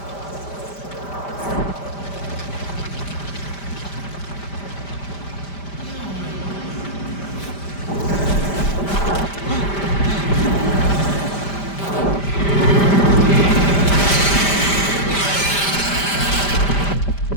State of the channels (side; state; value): right; late; 5.1 ms